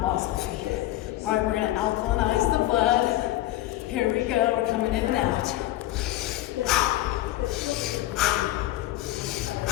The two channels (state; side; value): quieter; right; 15.6 dB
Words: balls of the feet. All right, we're gonna alkalinize the blood. Here we go, we're coming in and out.